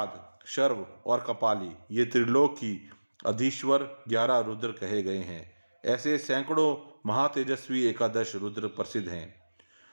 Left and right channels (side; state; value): both; inverted; correlation -1.00